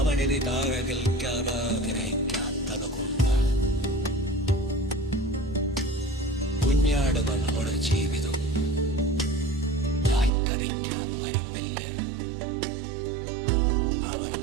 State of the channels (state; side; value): drops out; left; at 10.3 s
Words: താഴെ നിൽക്കാൻ ആഗ്രഹിക്കാത്തത് കൊണ്ടാണ്. കുഞ്ഞാടുകളുടെ ജീവിതം കരിക്കാൻ വരുന്നില്ല. അവർ